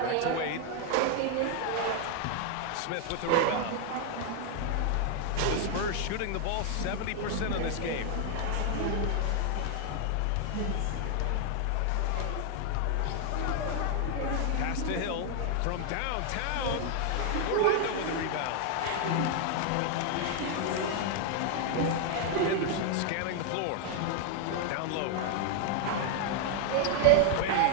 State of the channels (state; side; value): different; both; correlation 0.00